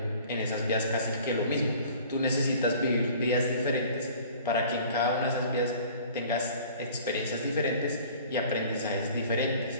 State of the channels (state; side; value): inverted; both; correlation -0.48